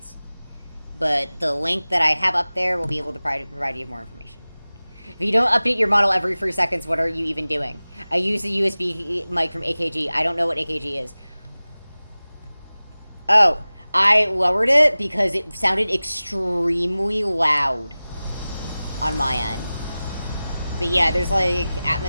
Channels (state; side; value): inverted; both; correlation -0.97